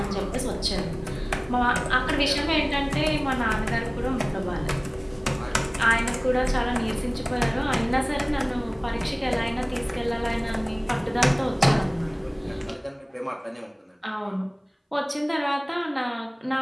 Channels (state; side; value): identical; both; correlation 1.00